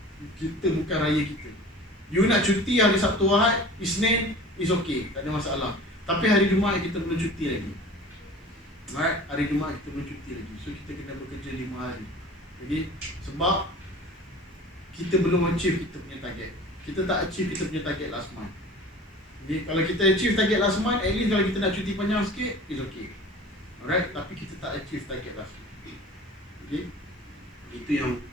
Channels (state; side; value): normal; both; correlation 0.41